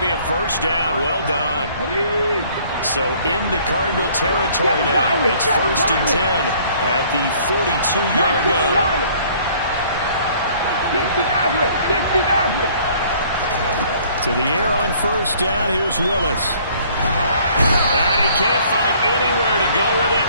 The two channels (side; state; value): both; inverted; correlation -0.57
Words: be a first down. Well done. So into Cardinal territory now. It's 1st and 10 at the 42-yard line. To the air on first down. Here's Willis. And he can't find anywhere to go with it,